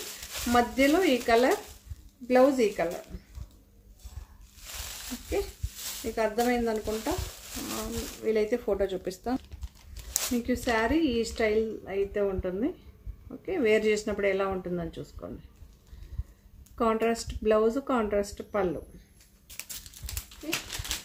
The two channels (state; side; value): identical; both; correlation 1.00